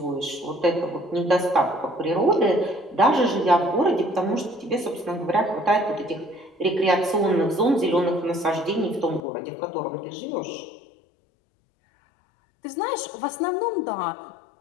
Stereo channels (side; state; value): right; drops out; at 9.2 s